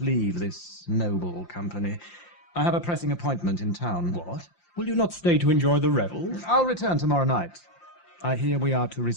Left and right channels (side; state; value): right; late; 5.8 ms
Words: this noble company. I have a pressing appointment in town. What? Will you not stay to enjoy the revels? I'll return tomorrow night. I hear we are to